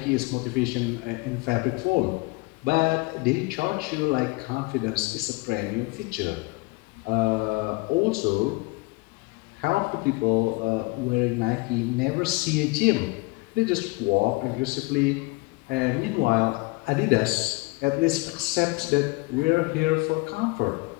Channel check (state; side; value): quieter; right; 25.5 dB